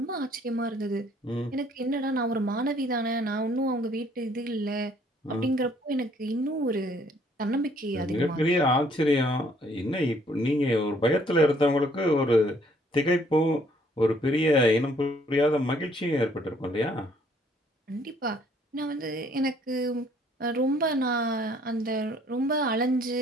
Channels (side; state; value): both; normal; correlation 0.63